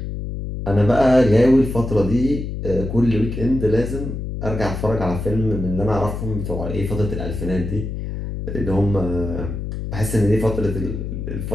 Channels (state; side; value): noise; left; hum, 6 dB below the sound